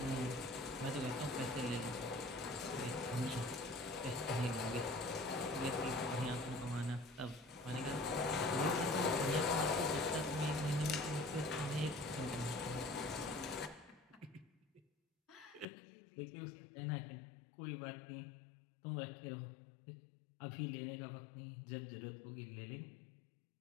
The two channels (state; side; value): drops out; right; at 15.7 s